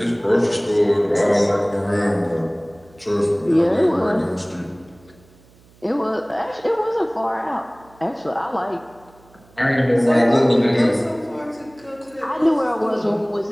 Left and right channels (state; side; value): noise; right; hum, 28 dB below the sound